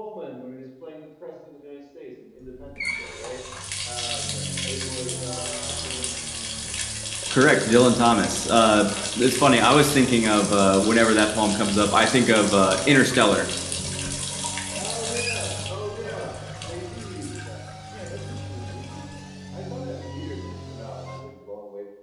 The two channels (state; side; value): identical; both; correlation 1.00